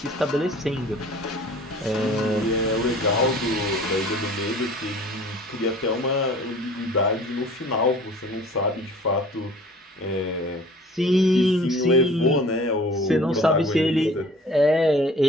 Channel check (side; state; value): both; normal; correlation 0.47